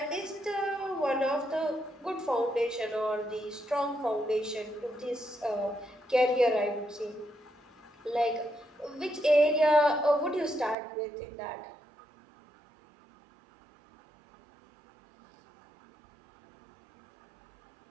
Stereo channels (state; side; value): drops out; left; at 10.8 s